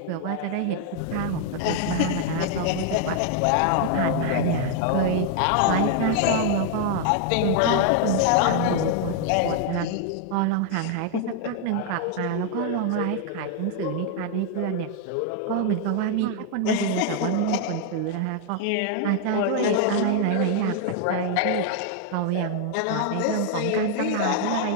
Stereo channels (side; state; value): both; different; correlation 0.00